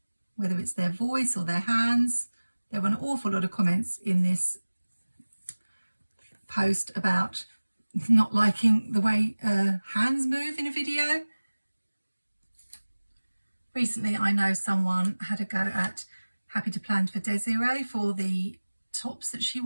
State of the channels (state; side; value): inverted; both; correlation -1.00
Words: whether it's their voice or their hands. There were an awful lot of comments in this post about not liking the way hands move in a video. Recently, I know someone had a go at Happy to Plan for Desiree for the tops that she